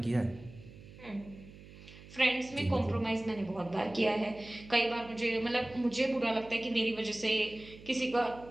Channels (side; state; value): right; noise; hum, 18 dB below the sound